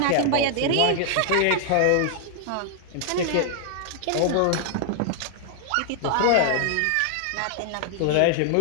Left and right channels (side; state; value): both; different; correlation 0.00